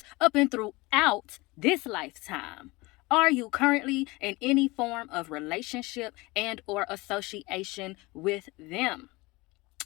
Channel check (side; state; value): right; quieter; 22.9 dB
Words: up and throughout this lifetime. Are you currently in any form of relationship and or association with them?